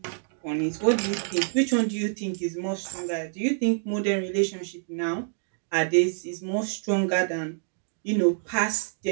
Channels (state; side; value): silent; left; digital silence